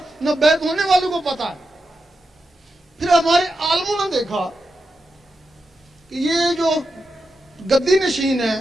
نہ بیعت ہونے والوں کو پتا. ہمارے عالموں نے دیکھا کہ یہ جو گدی نشین ہے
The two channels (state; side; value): normal; both; correlation 0.88